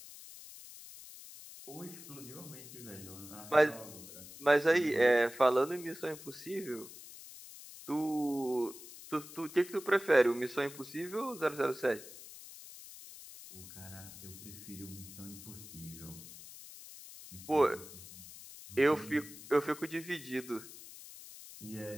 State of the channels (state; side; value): noise; left; hiss, 15 dB below the sound